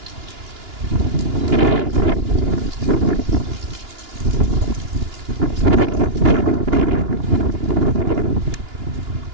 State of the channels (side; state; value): left; late; 2.9 ms